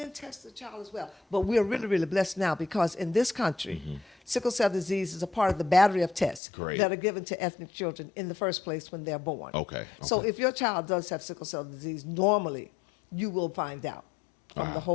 test the child as well. But we're really, really blessed now because in this country, sickle cell disease is a part of the battery of tests Great. that are given to ethnic children in the first place when they're born. Okay. So if your child does have sickle cell disease, normally you will find out from the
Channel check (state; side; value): drops out; right; at 6.4 s